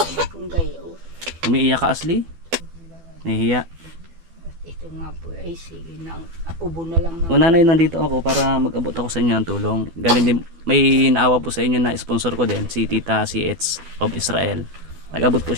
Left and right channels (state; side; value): late; left; 12 ms